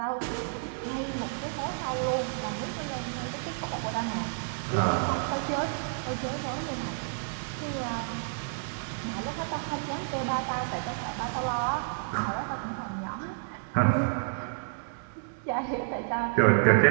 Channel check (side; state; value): left; silent; digital silence